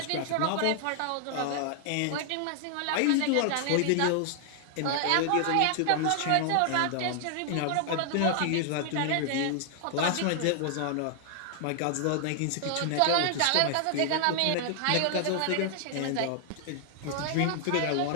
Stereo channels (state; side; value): different; both; correlation 0.00